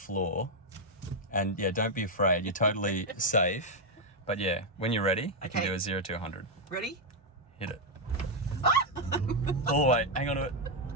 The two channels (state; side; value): normal; both; correlation 0.00